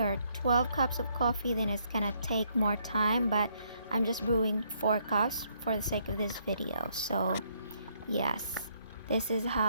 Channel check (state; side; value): inverted; both; correlation -0.71